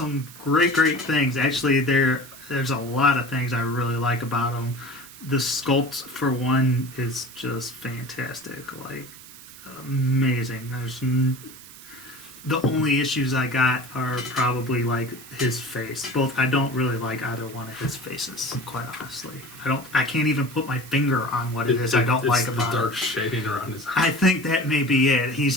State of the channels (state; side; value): noise; right; hiss, 18 dB below the sound